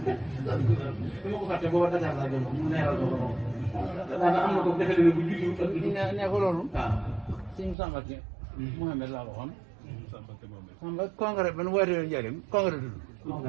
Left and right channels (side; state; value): left; drops out; at 7.8 s